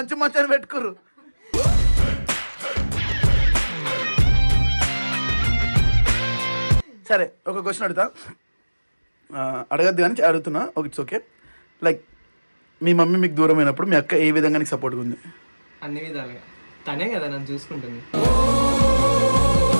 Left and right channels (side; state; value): both; inverted; correlation -1.00